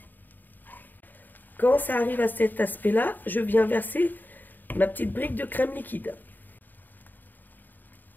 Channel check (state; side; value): late; right; 0.089 ms